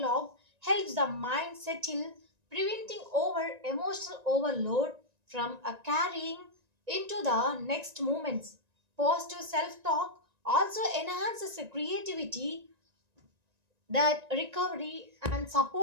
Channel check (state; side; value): late; left; 1.9 ms